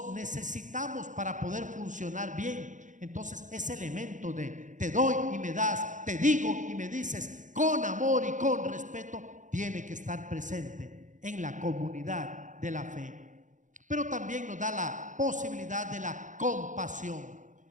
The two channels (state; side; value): late; left; 0.36 ms